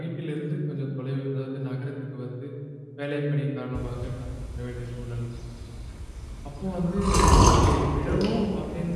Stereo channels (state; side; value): identical; both; correlation 1.00